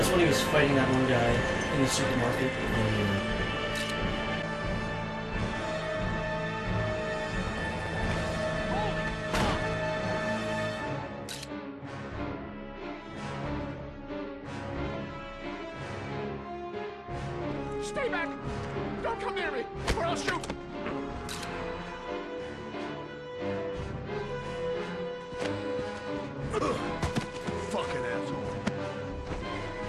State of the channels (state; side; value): identical; both; correlation 1.00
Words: when he was fighting that one guy in the supermarket. Stay back! Don't come near me, or I'll shoot! Fucking asshole.